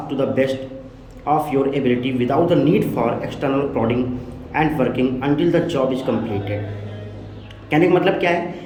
to the best of your ability without the need for external prodding and working until the job is completed। कहने का मतलब क्या है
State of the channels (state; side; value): identical; both; correlation 1.00